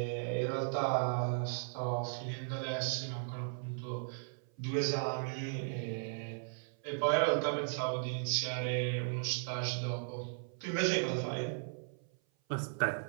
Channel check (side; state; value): left; silent; 53 dB below the other